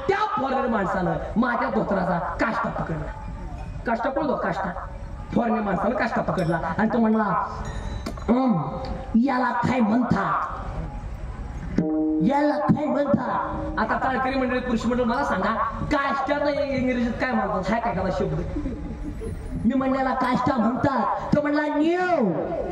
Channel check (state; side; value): identical; both; correlation 1.00